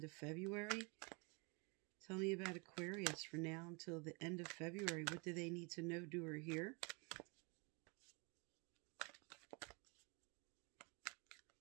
of February. Tell me about Aquarius for now until the end of February. What do they need to know, do, or hear?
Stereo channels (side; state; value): left; quieter; 31.2 dB